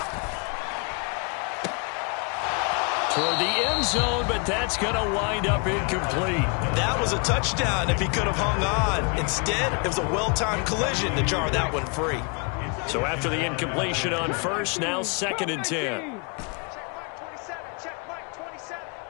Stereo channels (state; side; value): quieter; right; 34.2 dB